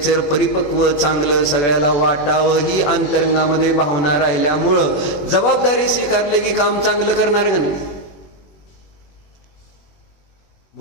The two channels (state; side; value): late; right; 21 ms